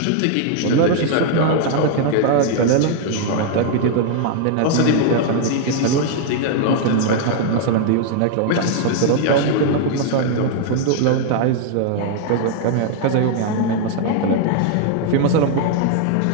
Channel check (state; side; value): different; both; correlation 0.00